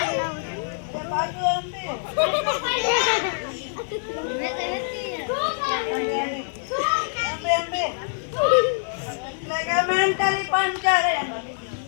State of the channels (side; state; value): right; silent; digital silence